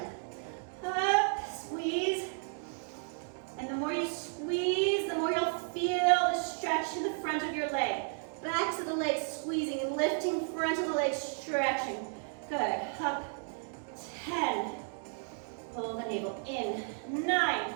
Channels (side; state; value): left; silent; 56 dB below the other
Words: Up, squeeze. And the more you squeeze, the more you'll feel the stretch in the front of your leg. Backs of the legs squeezing, lifting front of the legs, stretching. Good. Up. 10. Pull the navel in.